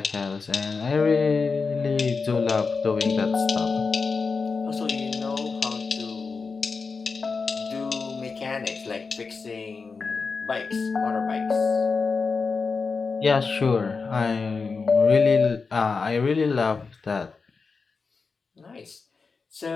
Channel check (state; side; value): quieter; right; 4.7 dB